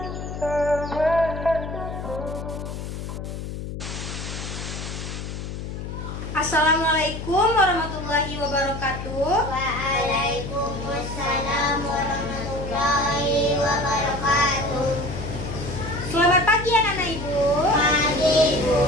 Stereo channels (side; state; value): left; noise; hum, 7 dB below the sound